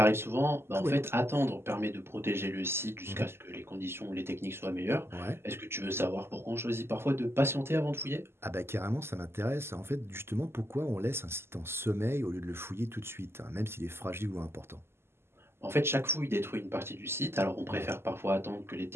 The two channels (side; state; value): left; late; 0.12 ms